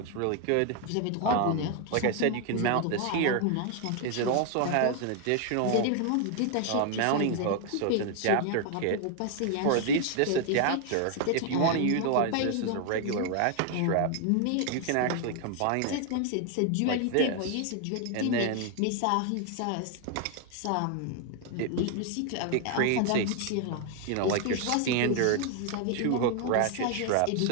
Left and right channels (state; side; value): different; both; correlation 0.00